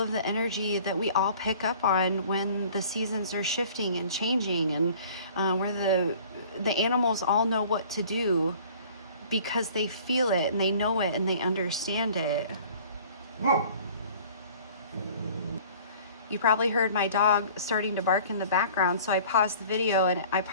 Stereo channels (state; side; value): inverted; both; correlation -0.49